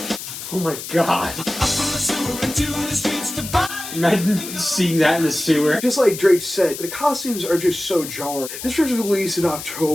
Oh my god. Imagine seeing that in the sewer. Just like Drake said, the costumes are just so jarring. This was released in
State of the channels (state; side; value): noise; left; hiss, 9 dB below the sound